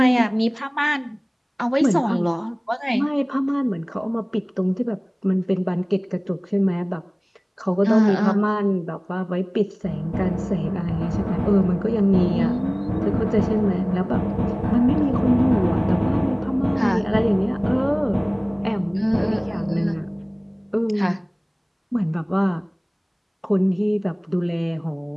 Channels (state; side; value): identical; both; correlation 1.00